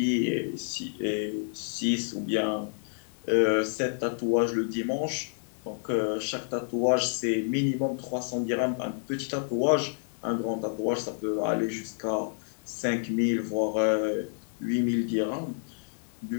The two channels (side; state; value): right; silent; 58 dB below the other